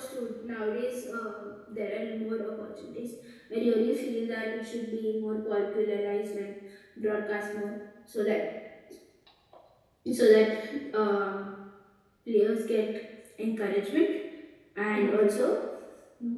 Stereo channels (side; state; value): both; identical; correlation 1.00